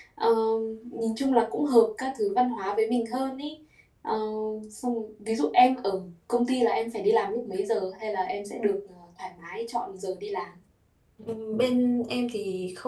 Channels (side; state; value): both; identical; correlation 1.00